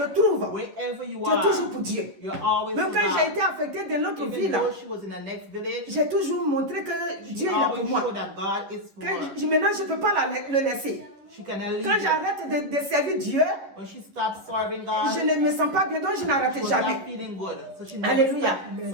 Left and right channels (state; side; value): late; left; 10 ms